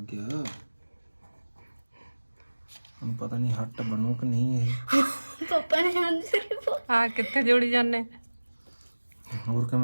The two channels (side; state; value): both; inverted; correlation -1.00